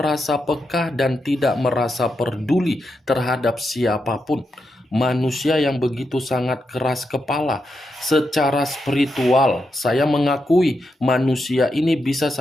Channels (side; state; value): both; normal; correlation 0.85